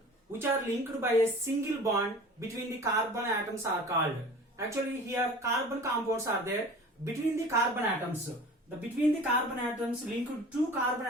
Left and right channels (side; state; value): both; normal; correlation 0.42